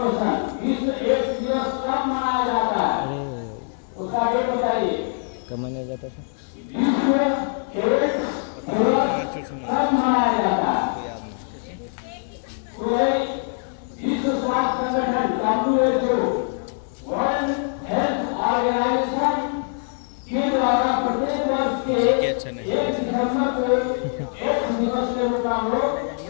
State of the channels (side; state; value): right; silent; 63 dB below the other